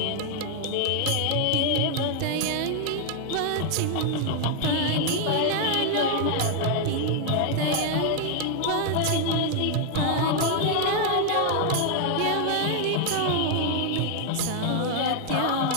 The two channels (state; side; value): different; both; correlation 0.00